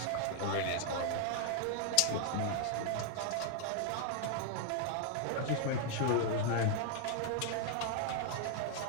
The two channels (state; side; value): different; both; correlation 0.00